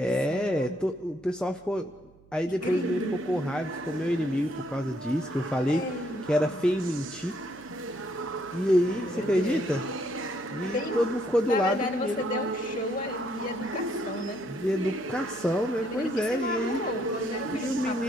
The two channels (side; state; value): right; noise; hum, 27 dB below the sound